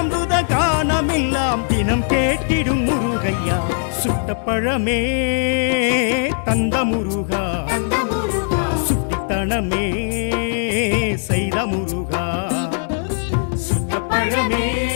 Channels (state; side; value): silent; right; digital silence